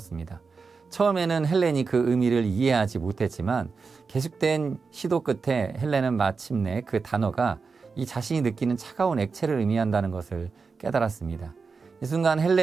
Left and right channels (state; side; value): quieter; left; 4.8 dB